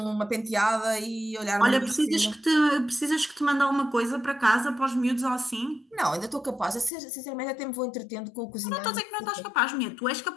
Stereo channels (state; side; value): drops out; right; at 6.9 s